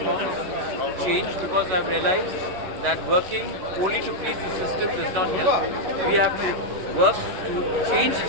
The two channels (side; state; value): left; late; 11 ms